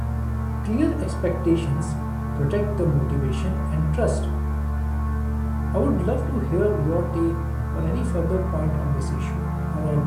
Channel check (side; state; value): both; identical; correlation 1.00